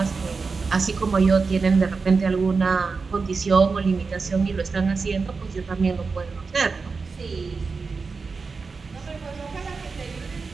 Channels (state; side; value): quieter; left; 4.6 dB